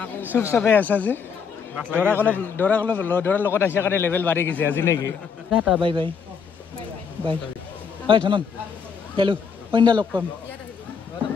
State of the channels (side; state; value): right; quieter; 6.3 dB